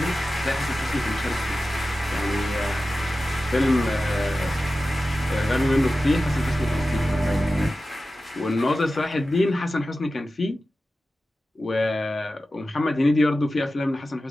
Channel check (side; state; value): both; normal; correlation 0.94